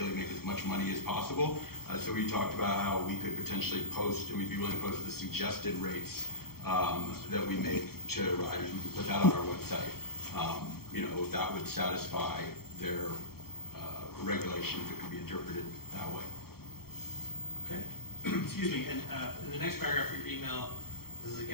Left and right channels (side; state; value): right; late; 0.94 ms